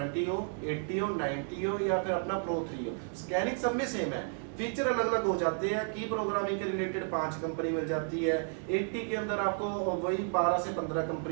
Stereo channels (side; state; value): left; silent; 56 dB below the other